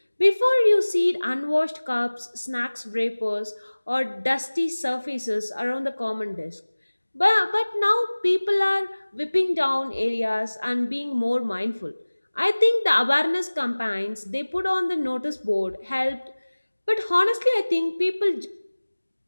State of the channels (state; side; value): inverted; both; correlation -1.00